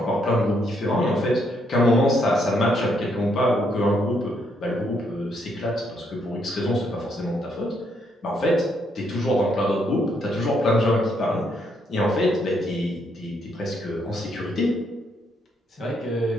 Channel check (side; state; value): both; normal; correlation 0.74